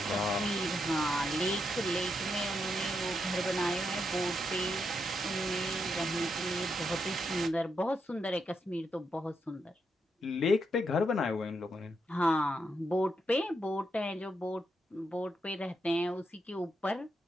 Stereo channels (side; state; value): both; normal; correlation 0.82